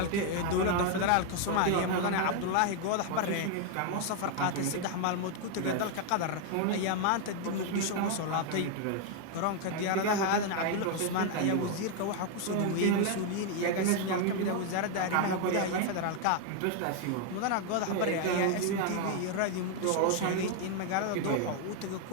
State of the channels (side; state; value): both; different; correlation 0.01